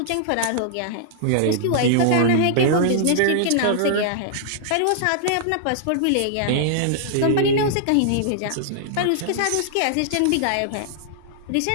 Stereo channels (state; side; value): different; both; correlation -0.01